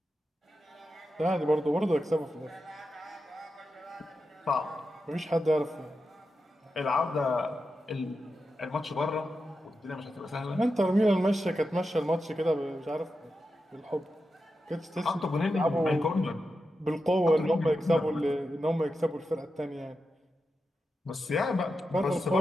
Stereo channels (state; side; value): normal; both; correlation 0.89